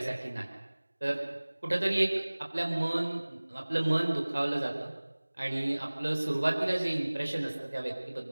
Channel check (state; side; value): inverted; both; correlation -1.00